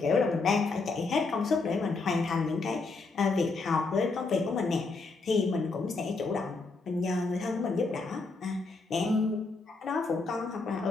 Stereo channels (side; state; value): right; quieter; 3.9 dB